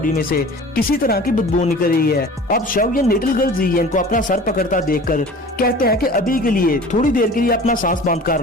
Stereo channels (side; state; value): both; normal; correlation 0.42